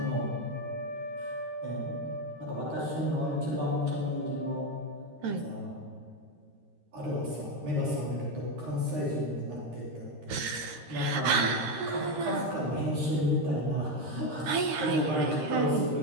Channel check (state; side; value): late; left; 13 ms